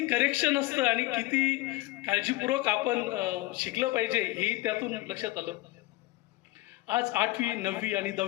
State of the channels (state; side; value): quieter; right; 19.6 dB